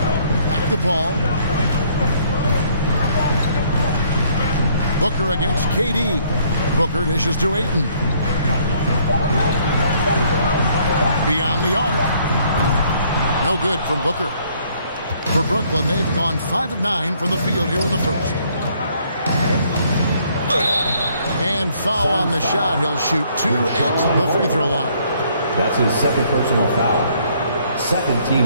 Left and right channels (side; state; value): both; inverted; correlation -0.64